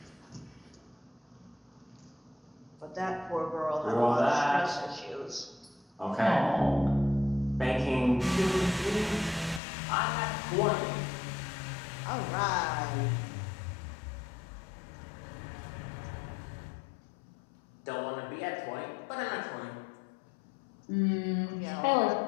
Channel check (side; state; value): right; drops out; at 9.6 s